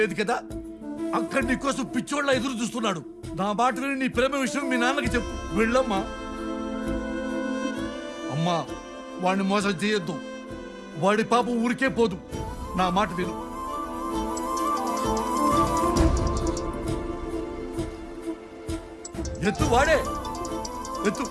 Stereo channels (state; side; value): identical; both; correlation 1.00